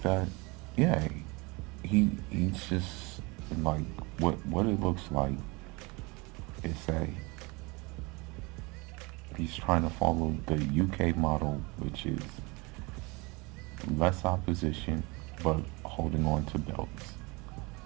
that, yeah, he's just like, what it looks like is that he's trying to follow the UK model, which is less opposition but holding on to belts.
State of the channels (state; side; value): quieter; left; 26.3 dB